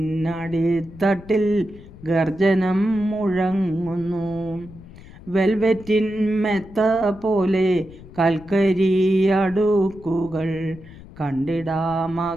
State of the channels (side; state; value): left; noise; rumble, 18 dB below the sound